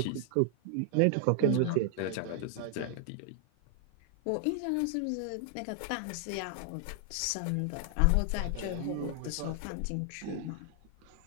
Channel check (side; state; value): both; different; correlation 0.00